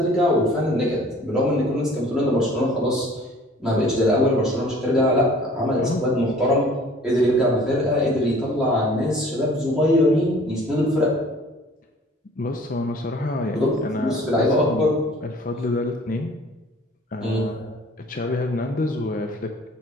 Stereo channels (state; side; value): normal; both; correlation 0.51